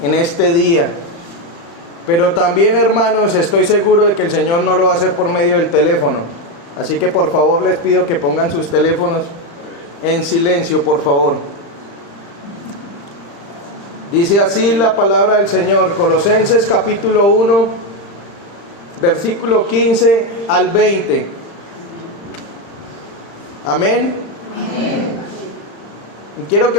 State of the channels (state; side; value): late; right; 35 ms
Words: en este día. Pero también, hermanos, estoy seguro de que el Señor no lo va a hacer por medio del teléfono. Así que por favor les pido que pongan sus teléfonos en silencio, por favor. Dice así la palabra del Señor, Colosenses capítulo 1, versículo 15 al 20. Amén. Amén. Y quiero